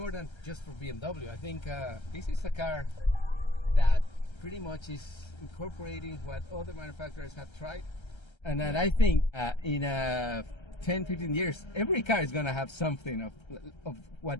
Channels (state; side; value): late; right; 1.3 ms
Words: than just for BMW. I think this is a car that pretty much is incorporating what other manufacturers have tried. And then I think in 10, 15 years, every car is going to have something of what